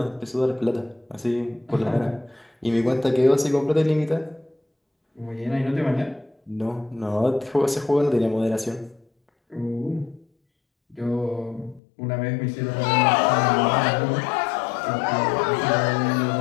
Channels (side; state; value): right; drops out; at 11.8 s